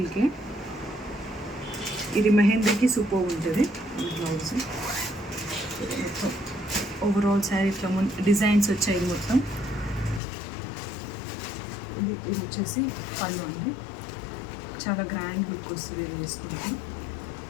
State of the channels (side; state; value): right; drops out; at 10.2 s